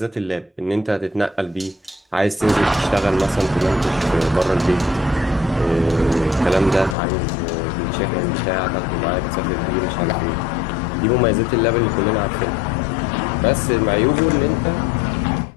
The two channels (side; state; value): right; drops out; at 7.0 s